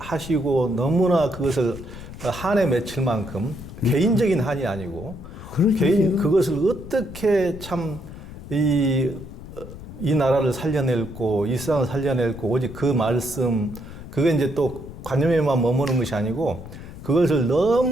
너무나 그것을 한에 맺힐 만큼 개인적인 한이 아니고 그것을 어떻게 참 이 나라를 살려낼고 이 세상을 살려낼고 오직 그 말씀 그게 이제 또 관념에만 머무는 것이 아니고 그것을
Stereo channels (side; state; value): left; noise; rumble, 13 dB below the sound